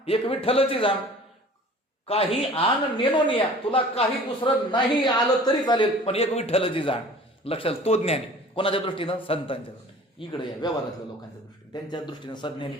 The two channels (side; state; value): both; normal; correlation 0.46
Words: एक विठ्ठलची जाण. काही आण नेनोनिया, तुला काही दुसरं नाही आलं तरी चालेल, पण एक विठ्ठलची जाण. लक्षात, तो ज्ञानी. कोणाच्या दृष्टीनं? संतांच्या दृष्टीने. इकडे या व्यवहारातल्या लोकांच्या दृष्टीने, त्यांच्या दृष्टीने सज्ञानी